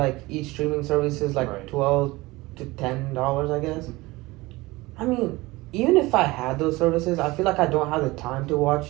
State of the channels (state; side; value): quieter; left; 21.1 dB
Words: each streaming service is like Right. $12 to $10, I guess. I mean, even if I had those services, I feel like I don't have the time to